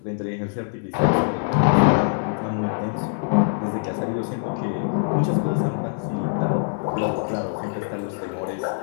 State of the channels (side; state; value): right; silent; 62 dB below the other